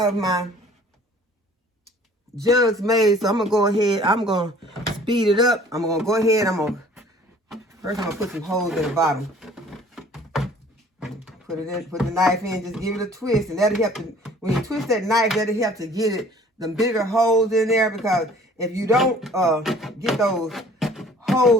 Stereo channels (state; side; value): normal; both; correlation 0.52